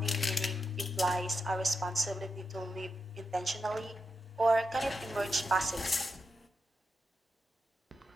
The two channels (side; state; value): both; normal; correlation 0.87